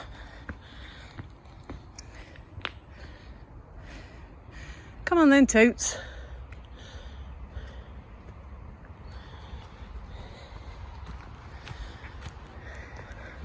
Come on then, Toots.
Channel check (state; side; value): identical; both; correlation 1.00